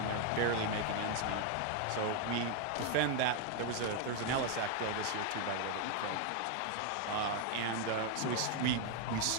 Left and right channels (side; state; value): both; different; correlation 0.00